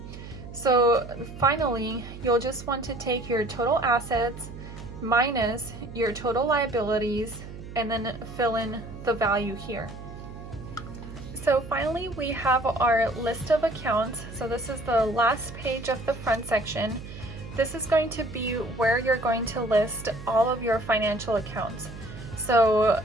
So finally, you'll just want to take your total assets minus your total liabilities and then fill in the value here. So finally, we have our list of accounts. So this is the last page of the front section. This is going to be where you're going to list all of your financial accounts. So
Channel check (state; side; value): noise; right; hum, 13 dB below the sound